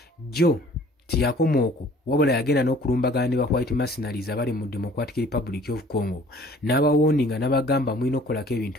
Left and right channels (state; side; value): normal; both; correlation 0.53